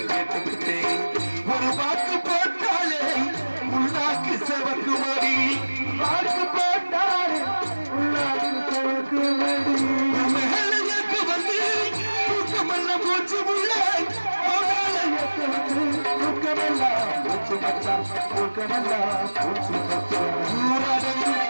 கேட்டுக்கிட்டேன். ஒரு வாக்கு போட்டாலே உள்நாக்கு செவக்கு மடி வாக்கு போட்டாலே உள்நாக்கு செவக்கு மடி மேலுக்கு வந்து தூக்கமெல்லாம் மூச்சு உள்ள தூக்கமெல்லாம் மூச்சு மச்சா தூக்கமெல்லாம் மூச்சு மச்சா ஊரடங்கு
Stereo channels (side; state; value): both; inverted; correlation -1.00